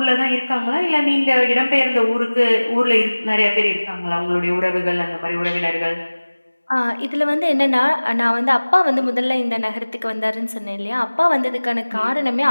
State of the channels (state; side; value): inverted; both; correlation -1.00